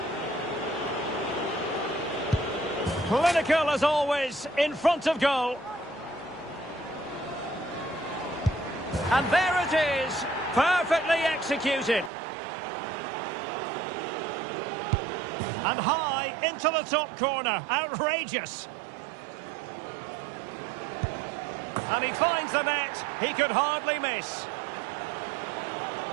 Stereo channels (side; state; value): left; drops out; at 12.1 s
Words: Clinical as always, in front of goal. And there it is, perfectly executed. And high into the top corner, outrageous. And he finds the net, he could hardly miss.